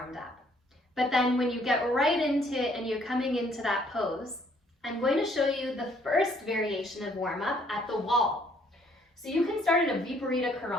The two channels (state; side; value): normal; both; correlation 0.64